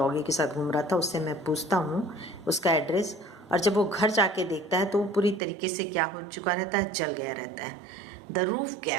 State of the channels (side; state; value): left; drops out; at 5.4 s